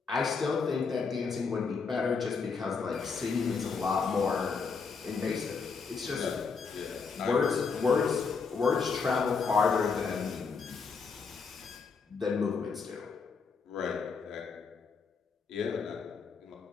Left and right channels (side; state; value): right; quieter; 5.1 dB